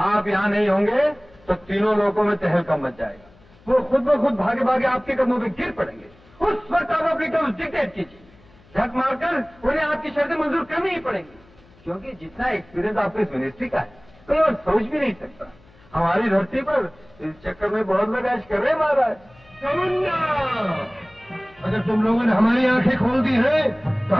यहां नहीं होंगे तो तीनों लोगों में तहलका मच जाएगा। वो खुद ब खुद भागे भागे आपके कदमों पे गिर पड़ेंगे। उस वक्त आप अपनी टर्म्स डिक्टेट कीजिए, झक मारकर उन्हें आपकी शर्तें मंजूर करनी ही पड़ेंगी, क्योंकि जितना एक्सपीरियंस आपको इस मिनिस्ट्री का है कोई और सोच भी नहीं सकता। हमारी धरती पर इस चक्कर में बहुत लोग ऐश कर रहे हैं महाराज। अगर तुम लोगों ने हमारी आंखें खोल दी हैं तो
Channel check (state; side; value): noise; left; hum, 28 dB below the sound